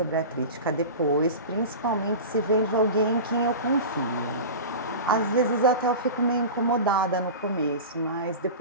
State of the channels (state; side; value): inverted; both; correlation -0.30